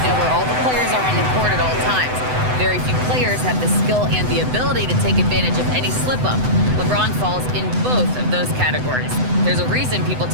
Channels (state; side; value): late; left; 7.9 ms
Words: know where all the players are on the court at all times. Very few players have the skill and the ability to take advantage of any slip-up. LeBron falls in both of those categories. There's a reason people